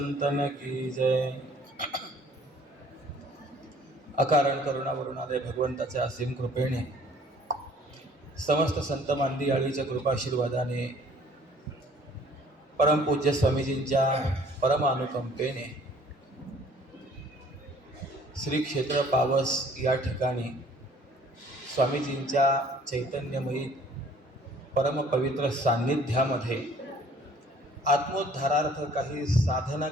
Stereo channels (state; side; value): normal; both; correlation 0.56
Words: की जय। अकारण करुणावरुणालय भगवंताच्या असीम कृपेने, समस्त संत मांदियाळीच्या कृपाशीर्वादाने, परमपूज्य स्वामीजींच्या परमानुकंपेने श्री क्षेत्र पावस या ठिकाणी स्वामीजींच्या चैतन्यमयी परमपवित्र सान्निध्यामध्ये आत्मोद्धारार्थ काही साधना